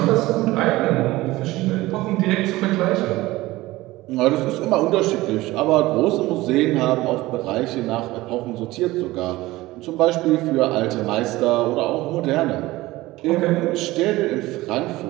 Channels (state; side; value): quieter; left; 18.6 dB